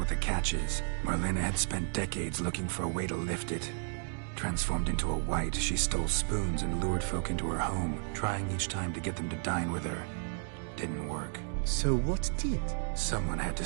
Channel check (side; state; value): left; silent; 56 dB below the other